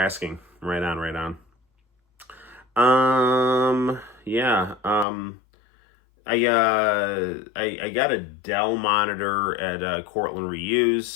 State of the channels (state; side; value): drops out; right; at 5.1 s